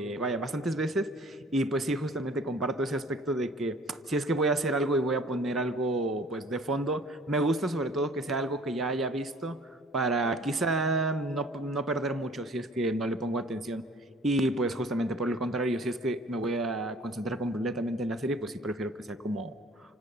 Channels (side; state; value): both; normal; correlation 0.51